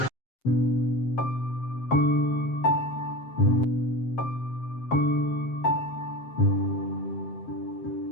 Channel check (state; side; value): late; right; 7.6 ms